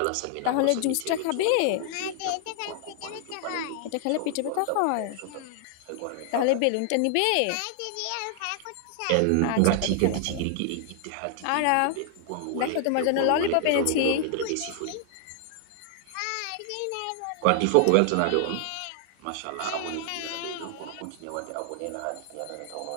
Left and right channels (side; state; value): both; different; correlation 0.00